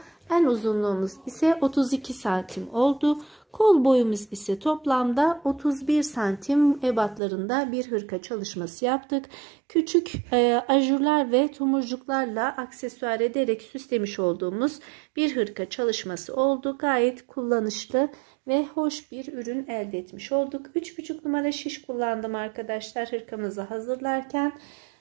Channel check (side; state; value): left; drops out; at 7.2 s